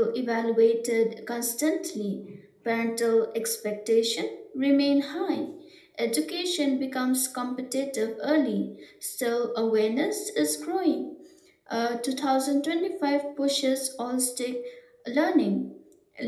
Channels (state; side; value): identical; both; correlation 1.00